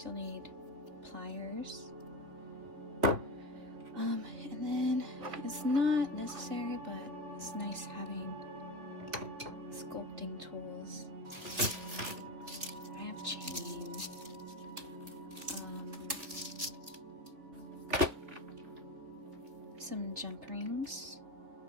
you'll need pliers. And then it's not necessary, but it's nice having sculpting tools. I have chain. Some jump rings.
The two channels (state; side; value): late; left; 3.5 ms